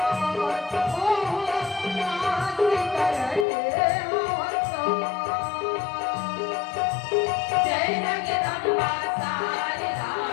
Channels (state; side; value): drops out; right; at 3.5 s